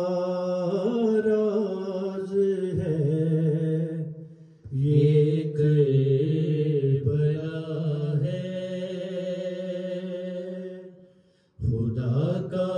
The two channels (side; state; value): both; identical; correlation 1.00